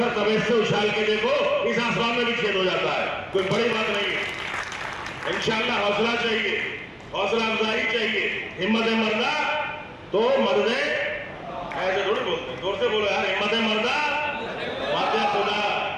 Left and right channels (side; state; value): both; identical; correlation 1.00